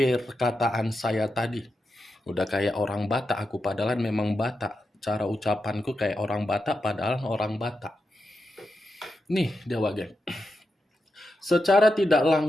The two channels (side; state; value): both; normal; correlation 0.88